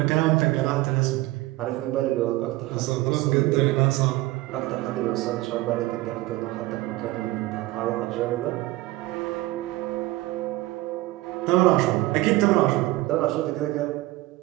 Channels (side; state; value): left; quieter; 18.7 dB